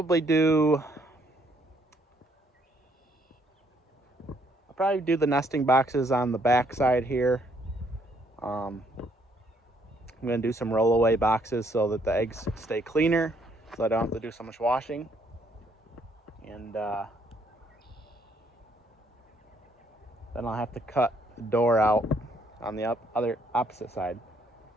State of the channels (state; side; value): normal; both; correlation 0.68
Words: do the nesting boxes on the back side here. I'm going to do some rollaway boxes so that the eggs stay cleaner. so I don't have to do so much washing. And then I'll have to cut the door out on the other opposite side.